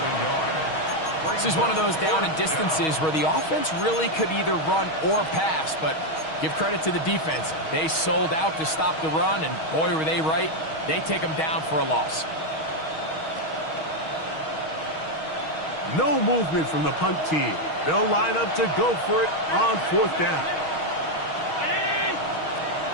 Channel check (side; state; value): right; late; 6.3 ms